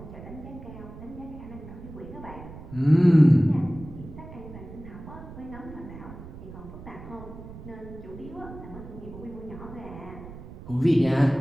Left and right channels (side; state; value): right; noise; rumble, 14 dB below the sound